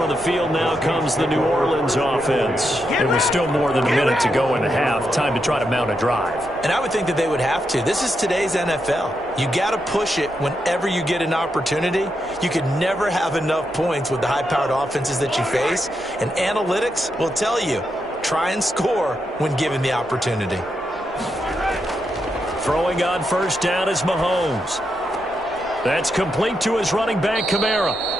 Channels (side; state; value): both; normal; correlation 0.84